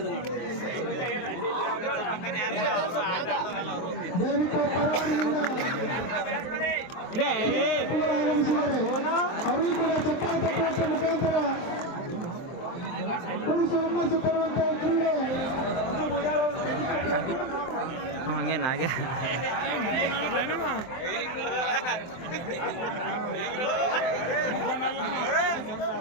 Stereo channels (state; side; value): late; right; 23 ms